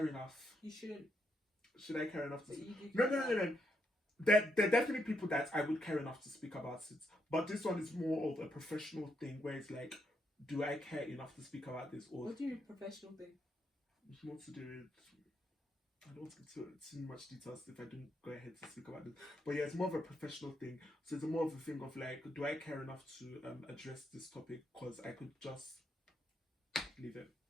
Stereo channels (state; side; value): normal; both; correlation 0.78